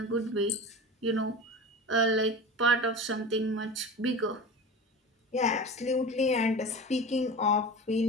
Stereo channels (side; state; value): both; normal; correlation 0.31